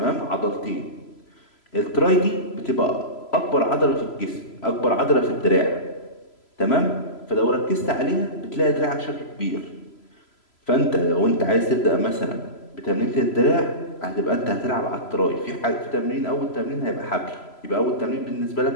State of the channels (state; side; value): late; right; 3.0 ms